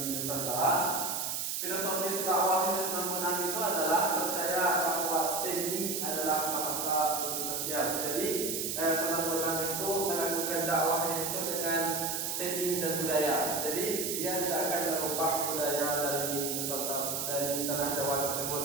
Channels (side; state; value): right; noise; hiss, 1 dB below the sound